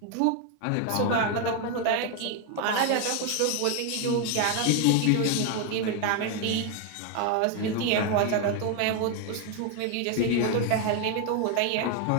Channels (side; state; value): both; different; correlation 0.01